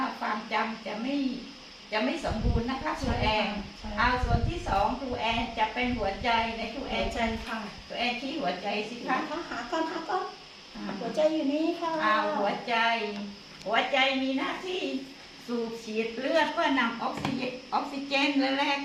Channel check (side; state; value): both; identical; correlation 1.00